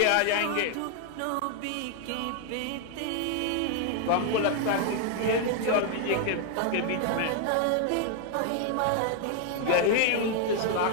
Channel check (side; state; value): both; different; correlation 0.00